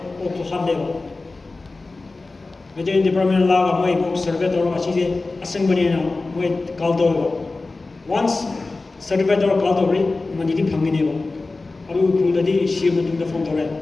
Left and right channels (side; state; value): right; quieter; 3.5 dB